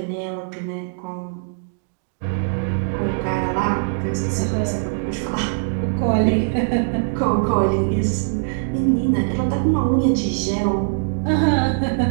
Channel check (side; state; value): left; silent; digital silence